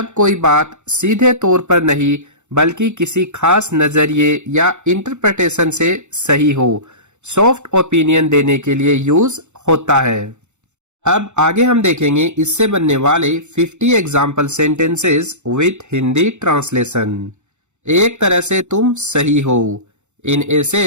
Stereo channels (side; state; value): left; late; 0.83 ms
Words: कोई बात सीधे तौर पर नहीं बल्कि किसी खास नजरिए या इंटरप्रिटेशन से सही हो, सॉफ्ट ओपिनियन देने के लिए यूज होता है। अब आगे हम देखेंगे इससे बनने वाले 50 example sentences with Hindi translation. एक तरह से तुम सही हो, in a